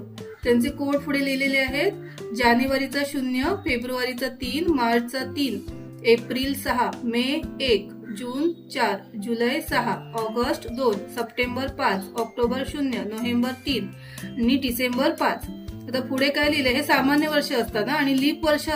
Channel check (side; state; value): both; identical; correlation 1.00